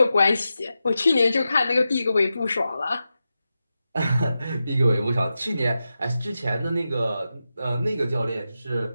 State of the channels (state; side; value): inverted; both; correlation -0.91